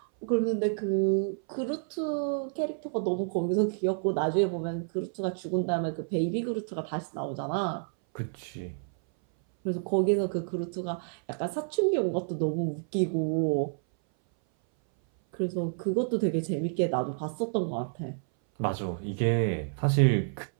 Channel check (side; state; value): left; silent; 58 dB below the other